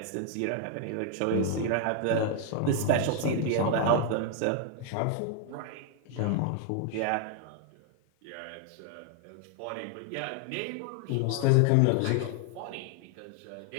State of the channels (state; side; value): different; both; correlation 0.00